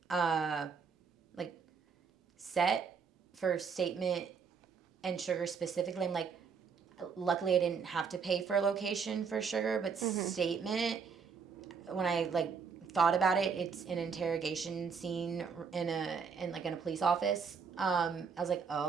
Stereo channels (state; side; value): quieter; left; 5.9 dB